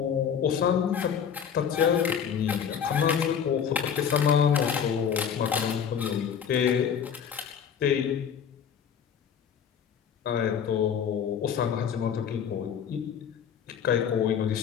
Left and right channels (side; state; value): right; quieter; 7.8 dB